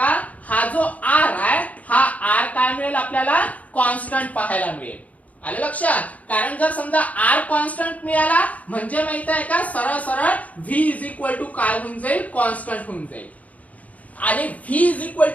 हा जो r आहे हा r काय मिळेल? आपल्याला कॉन्स्टंट पाहायला मिळेल. आलं लक्षात? कारण जर समजा r कॉन्स्टंट मिळाला म्हणजे माहित आहे का, सरळ सरळ v इज इक्वल टू काय होऊन जाईल? कॉन्स्टंट होऊन जाईल. आणि v is equal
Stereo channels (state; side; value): late; right; 0.071 ms